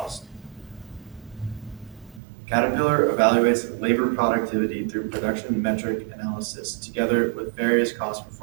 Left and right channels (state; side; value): drops out; left; at 2.2 s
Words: Caterpillar evaluates labor productivity through production metric analysis together with various cost